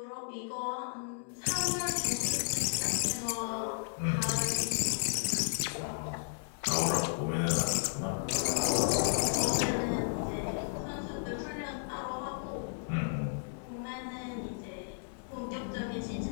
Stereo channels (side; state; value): right; silent; digital silence